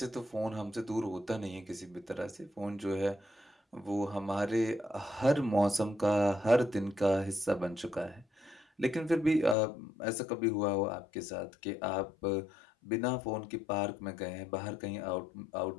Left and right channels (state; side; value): drops out; right; at 9.6 s